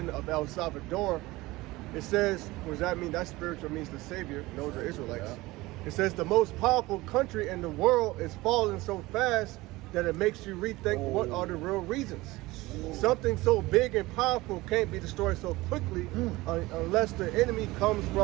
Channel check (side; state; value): left; quieter; 20.0 dB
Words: of El Salvador. It says, what does that mean? That spiritual means the savior. Those are Israelites. Yeah. It says the most powerful country in the world is falling so fast that it makes you rethink what are the real reasons. Something so big and powerful can't be destroyed so quickly unless the enemy comes